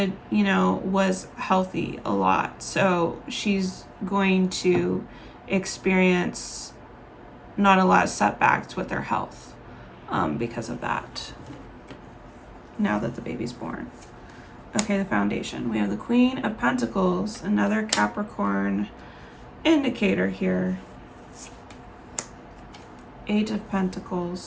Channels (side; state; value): both; identical; correlation 1.00